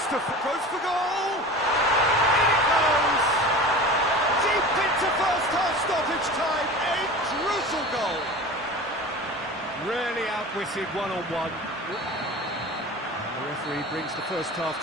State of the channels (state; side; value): normal; both; correlation 0.35